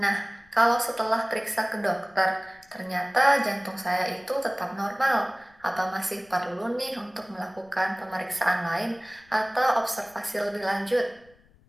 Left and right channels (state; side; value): noise; left; rumble, 30 dB below the sound